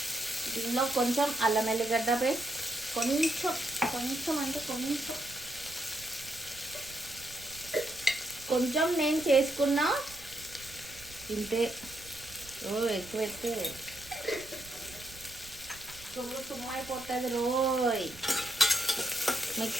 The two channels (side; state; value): right; noise; rumble, 20 dB below the sound